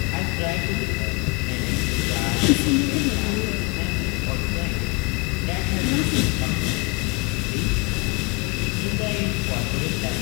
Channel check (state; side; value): quieter; right; 27.3 dB